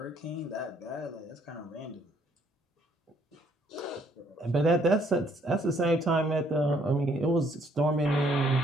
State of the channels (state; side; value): normal; both; correlation 0.66